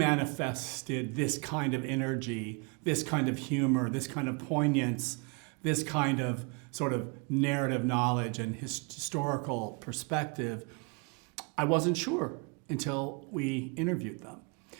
this kind of energy, this kind of humor, this kind of poignance, this kind of sort of narrative knowledge and historical perspective, I wasn't sure until we interviewed them.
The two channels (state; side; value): quieter; left; 33.3 dB